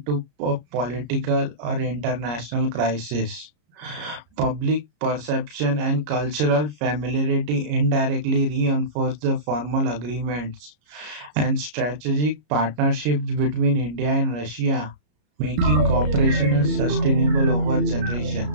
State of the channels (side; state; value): left; late; 33 ms